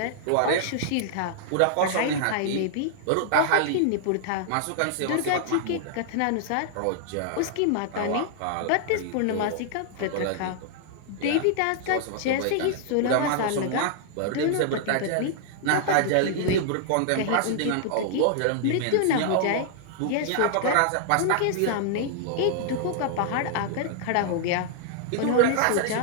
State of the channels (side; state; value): both; different; correlation -0.01